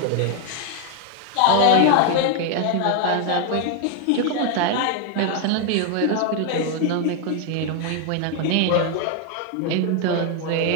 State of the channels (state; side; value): different; both; correlation 0.01